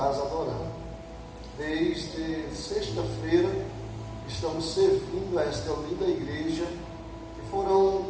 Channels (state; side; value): identical; both; correlation 1.00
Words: adorando. Desde sexta-feira estamos servindo a esta linda igreja, e